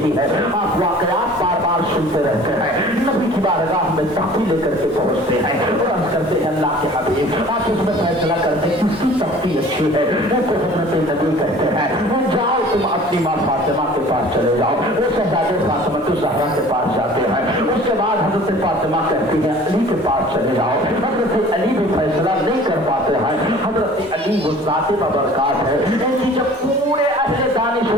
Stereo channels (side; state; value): both; normal; correlation 0.47